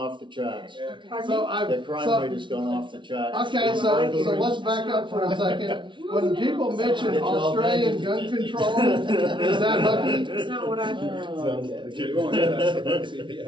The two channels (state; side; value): late; left; 0.24 ms